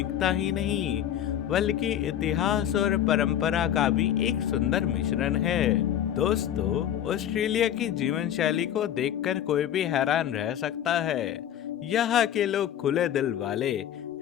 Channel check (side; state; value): right; quieter; 10.6 dB